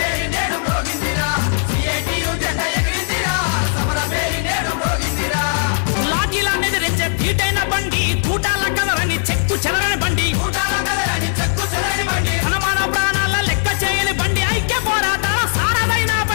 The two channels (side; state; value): right; silent; digital silence